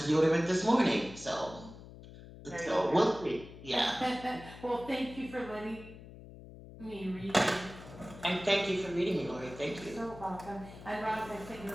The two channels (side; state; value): left; noise; hum, 16 dB below the sound